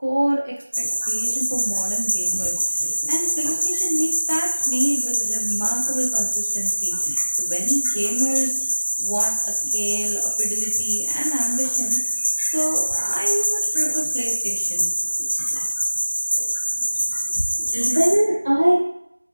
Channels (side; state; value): both; inverted; correlation -1.00